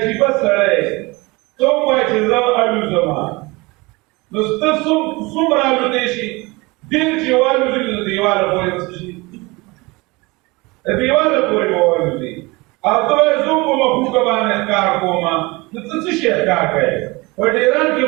سړی، ته ووایې چې زه الوزمه، نو ته څومره الوتی شي؟ ډېر چې والوزي نو د دیواله پورې به څه شي؟ د دیواله پورې به والوزي. او ته وایې زه په مخوکه باندې ښکار کومه، نو ته څه شی ښکار کوې؟ په ډېران کې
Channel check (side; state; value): left; quieter; 24.1 dB